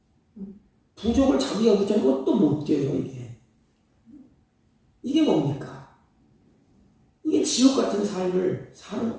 부족을 자기가 붙여놓고 또 못 뛰어요. 이게 뭡니까? 이게 지옥 같은 삶을 사는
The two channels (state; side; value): identical; both; correlation 1.00